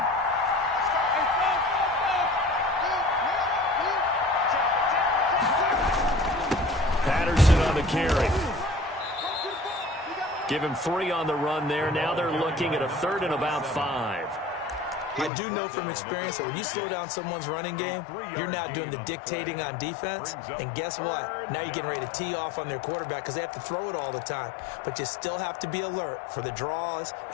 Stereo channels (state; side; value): drops out; right; at 15.3 s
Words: Patterson on the carry. Give him 3 on the run there. Now they're looking at a 3rd and about 5. I do know from experience that when you slow down someone's running game, you're now doing the dictating on defense. And guess what? Now you're getting ready to tee off on their quarterback because they have to throw it all the time. But you still have to be alert for the draws